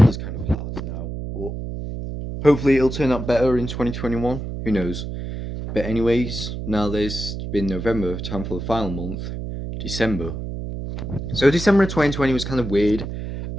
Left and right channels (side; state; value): right; noise; hum, 6 dB below the sound